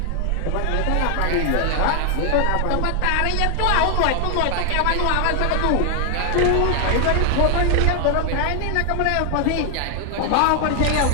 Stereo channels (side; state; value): both; different; correlation 0.00